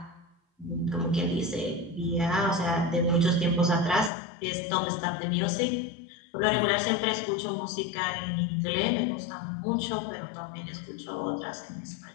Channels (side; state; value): right; drops out; at 4.1 s